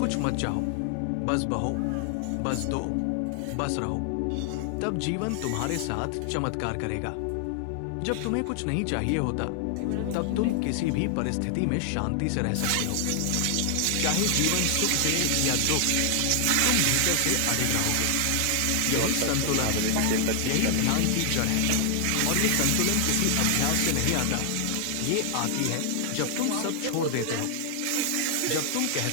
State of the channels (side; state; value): both; different; correlation 0.00